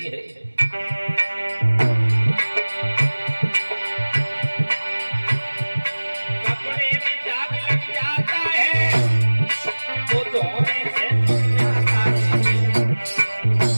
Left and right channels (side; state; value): both; inverted; correlation -1.00